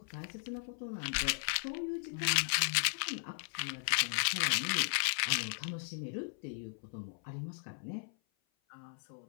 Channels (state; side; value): silent; right; 53 dB below the other